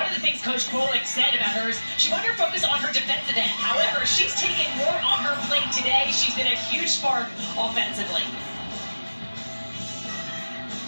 of the things Coach Pollock said about her is she wanted to focus on her defensive end. However, she's taken more on her plate today. She's been a huge spark offensively.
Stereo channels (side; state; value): both; inverted; correlation -1.00